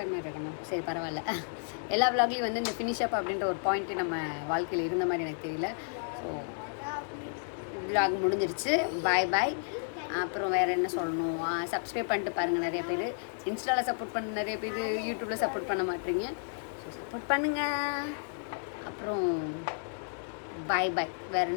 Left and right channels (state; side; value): silent; right; digital silence